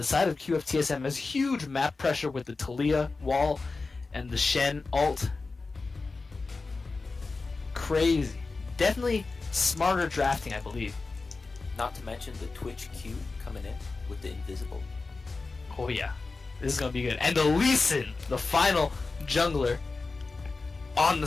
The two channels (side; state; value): right; quieter; 3.9 dB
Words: side of QFTSM has huge map pressure with the Talia wall and the Shen ult. Crazy. Definitely smarter drafting, I believe. Not to mention the Twitch Q coming in with the invisible. Oh yeah, this is gonna be good. And the Lee Sin, the final jungler, on the